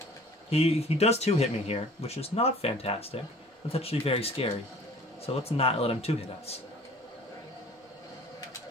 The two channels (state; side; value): normal; both; correlation 0.49